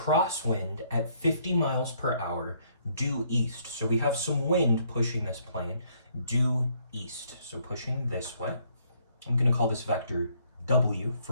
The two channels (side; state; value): both; inverted; correlation -0.67